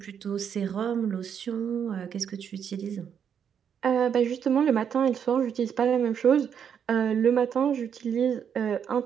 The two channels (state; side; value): quieter; left; 8.0 dB